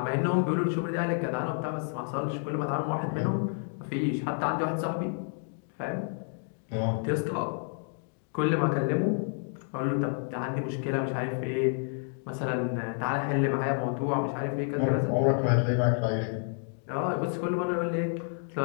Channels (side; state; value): right; silent; 55 dB below the other